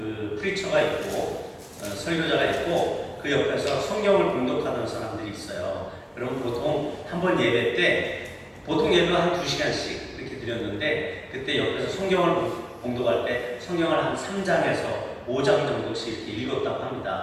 프리처가 있고 설교자가 있고 그 옆에서 성경을 봉독하는 사람들이 있어요. 그럼 보통 한 번 예배 때 보통 예배 한 2시간씩 이렇게 드렸는데 그때 옆에서 성경을 봉독할 때 성경을 한 3장에서 5장 정도씩 이렇게 읽었다고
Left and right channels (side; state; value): both; identical; correlation 1.00